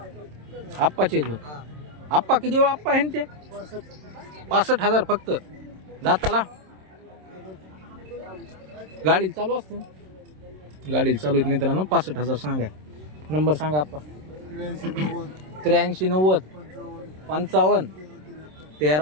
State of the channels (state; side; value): late; left; 27 ms